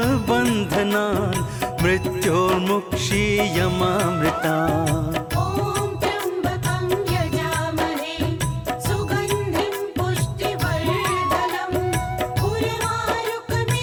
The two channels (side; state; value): both; identical; correlation 1.00